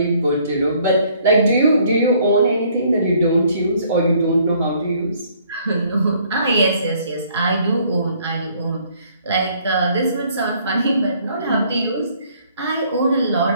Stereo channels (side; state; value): both; inverted; correlation -0.62